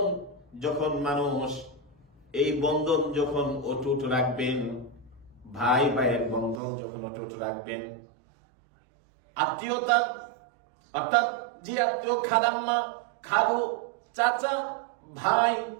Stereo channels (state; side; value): drops out; left; at 6.6 s